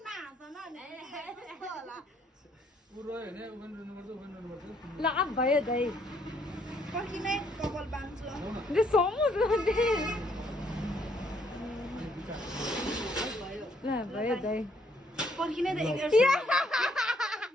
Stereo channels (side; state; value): both; normal; correlation 0.69